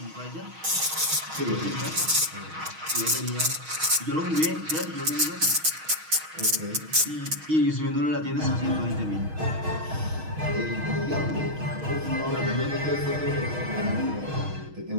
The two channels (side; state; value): left; late; 6.4 ms